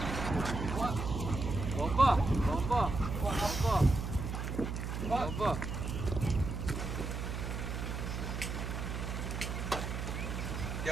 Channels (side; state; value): right; noise; hum, 4 dB below the sound